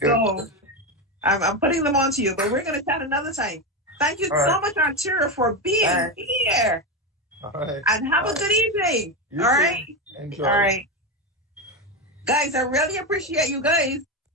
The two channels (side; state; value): both; normal; correlation 0.13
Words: So I'm putting them onto you, but we're going to chat another time. Thank you so much, Arturo, for being here. All right. And have a good evening. You all too. right. Enjoy. All right. Guys, I really appreciate you guys